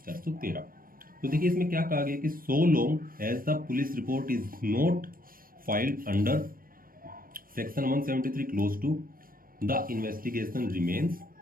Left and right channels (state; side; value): late; left; 0.41 ms